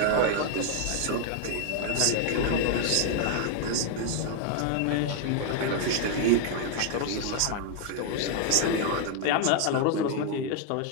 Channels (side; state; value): both; different; correlation 0.00